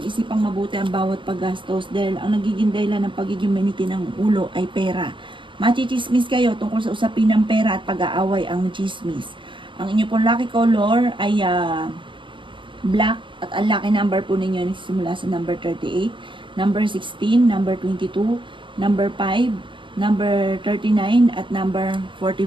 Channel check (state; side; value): late; left; 0.24 ms